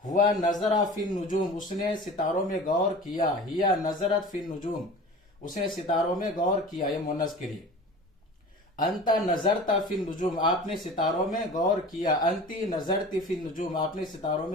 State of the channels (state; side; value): normal; both; correlation 0.38